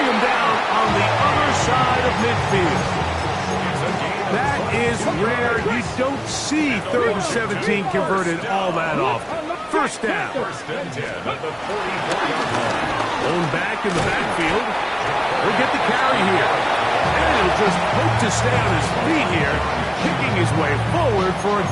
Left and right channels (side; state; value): both; identical; correlation 1.00